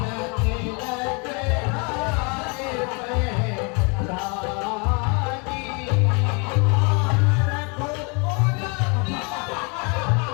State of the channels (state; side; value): quieter; right; 32.9 dB